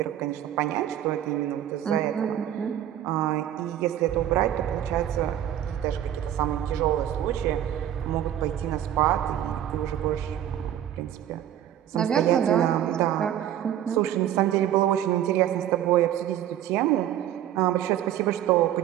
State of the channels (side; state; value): left; quieter; 11.3 dB